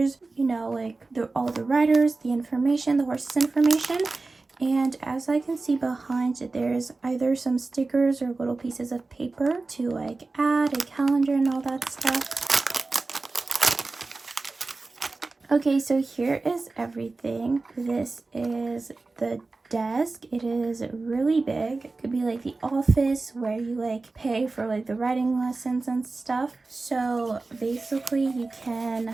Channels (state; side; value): quieter; left; 3.6 dB